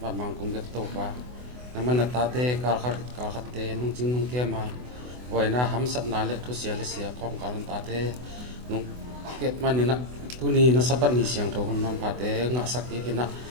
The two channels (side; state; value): left; late; 24 ms